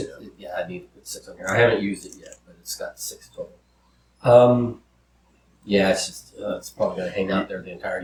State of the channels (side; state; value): both; identical; correlation 1.00